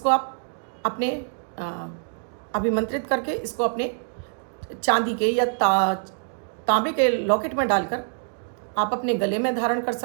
आप अपने अभिमंत्रित करके इसको अपने चांदी के या तांबे के लॉकेट में डालकर आप अपने गले में धारण कर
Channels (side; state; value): left; silent; digital silence